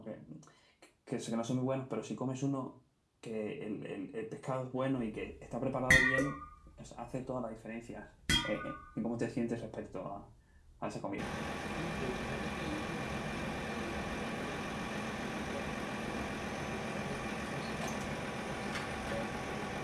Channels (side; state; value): both; identical; correlation 1.00